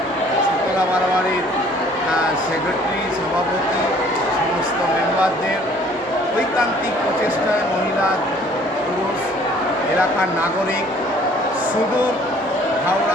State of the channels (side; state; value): both; normal; correlation 0.56